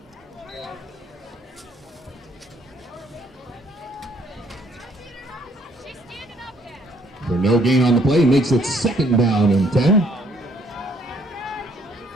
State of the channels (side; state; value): both; normal; correlation 0.65